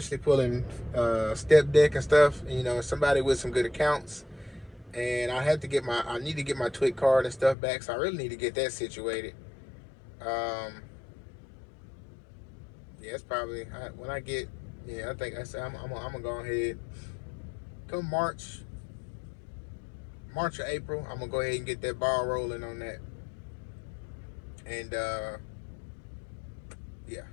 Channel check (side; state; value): right; drops out; at 7.6 s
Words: pulling step deck and stuff. Somebody with some good accounts. And I need to get my TWIC card and stuff back. So I really need to get that situated. Yeah, it's probably when I get. Yeah, I think I'm gonna go ahead. Come March or April, I'm gonna go ahead and get that ball rolling on that. And yeah,